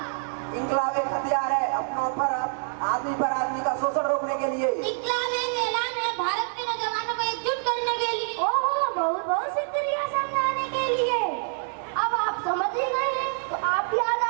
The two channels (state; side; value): silent; left; 58 dB below the other